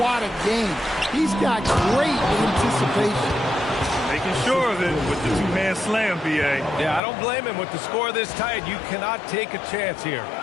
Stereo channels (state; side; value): drops out; right; at 7.0 s